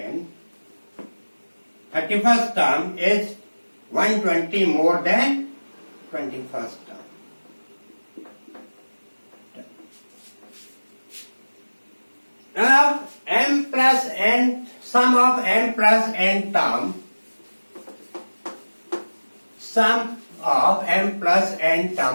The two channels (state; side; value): inverted; both; correlation -1.00